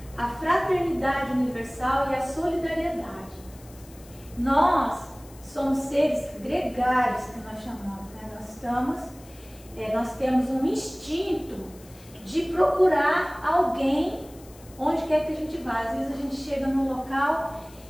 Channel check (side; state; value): left; noise; hiss, 23 dB below the sound